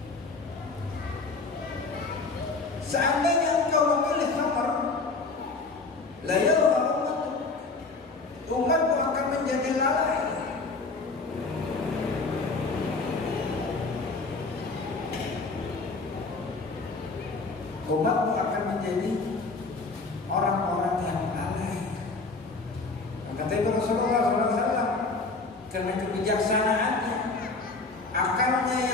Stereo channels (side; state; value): right; quieter; 3.8 dB